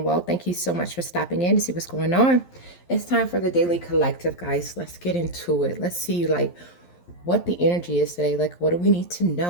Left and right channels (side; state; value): right; late; 11 ms